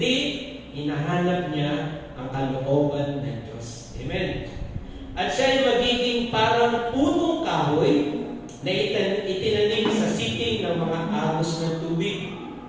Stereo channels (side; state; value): both; identical; correlation 1.00